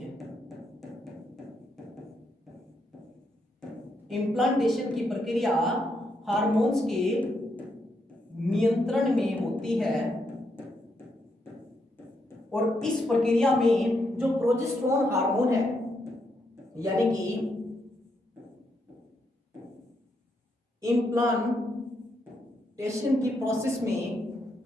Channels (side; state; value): both; normal; correlation 0.79